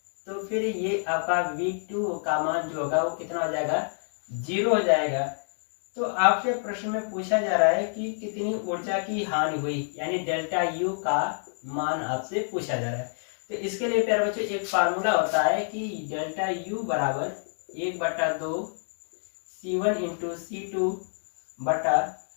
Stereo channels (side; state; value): right; silent; digital silence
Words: तो फिर ये आपका V2 का मान जो होगा वो कितना हो जाएगा, 0 हो जाएगा। तो आपके प्रश्न में पूछा जा रहा है कि कितनी ऊर्जा की हानि हुई, यानी डेल्टा U का मान आपसे पूछा जा रहा है। तो इसके लिए प्यारे बच्चों एक फार्मूला होता है कि डेल्टा U बराबर 1/2 C1 इंटू C2 बटा